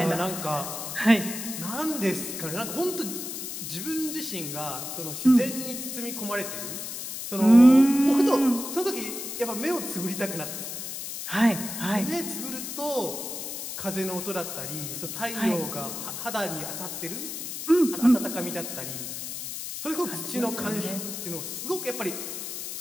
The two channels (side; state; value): left; noise; hiss, 6 dB below the sound